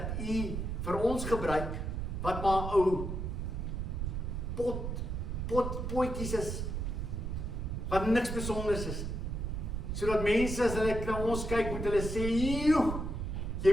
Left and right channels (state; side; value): noise; right; rumble, 3 dB below the sound